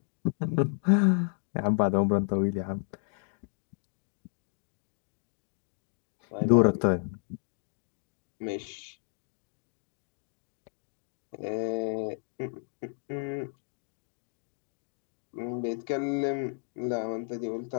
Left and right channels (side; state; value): right; silent; 56 dB below the other